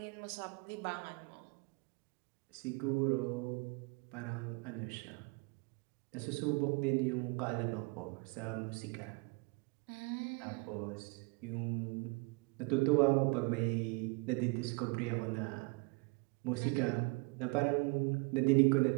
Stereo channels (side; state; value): left; quieter; 30.3 dB